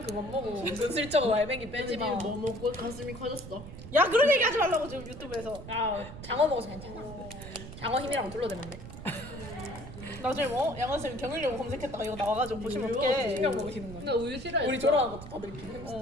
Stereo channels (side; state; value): right; noise; rumble, 12 dB below the sound